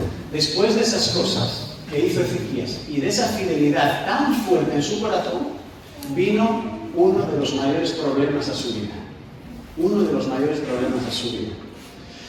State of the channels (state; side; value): identical; both; correlation 1.00